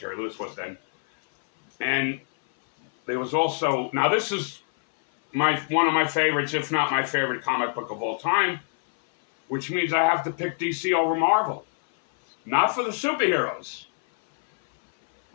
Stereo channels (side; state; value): right; silent; 59 dB below the other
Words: Lewis was then. And there was also, now this is one of my favorites, if not my favorite comic book of all time, which means I have to pick DC over Marvel. Not for the superheroes,